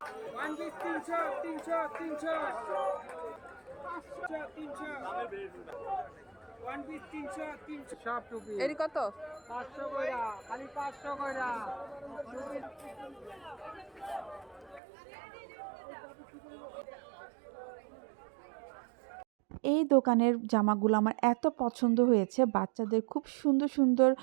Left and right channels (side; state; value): left; drops out; at 14.8 s